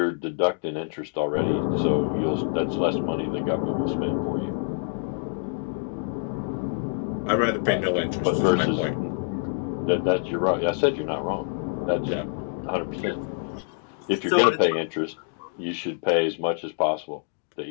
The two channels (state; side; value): silent; right; digital silence